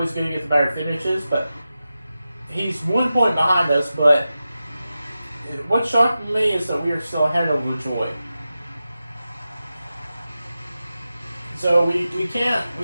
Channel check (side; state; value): both; inverted; correlation -0.93